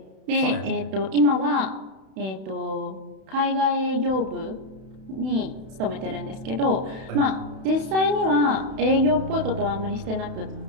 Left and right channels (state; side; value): late; left; 31 ms